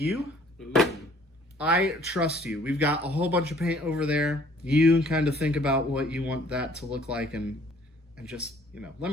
Ooh. I trust you. We've got a whole bunch of paint over there. You kind of think about what you want that to look like, and just, you know, let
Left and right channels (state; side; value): normal; both; correlation 0.57